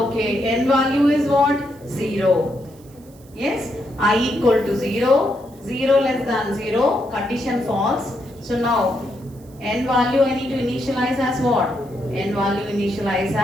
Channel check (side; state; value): right; noise; hiss, 28 dB below the sound